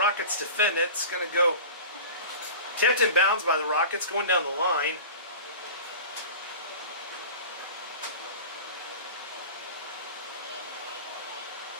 defend it. It's going to go tipped in bounds by the Rockets, going down the line.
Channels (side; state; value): both; inverted; correlation -0.36